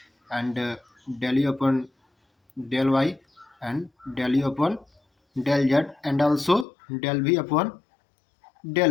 and del u upon del y, and del u upon del z, and also del v upon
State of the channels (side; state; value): right; drops out; at 6.7 s